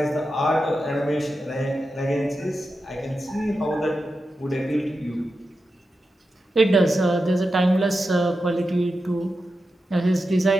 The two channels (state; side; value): normal; both; correlation 0.90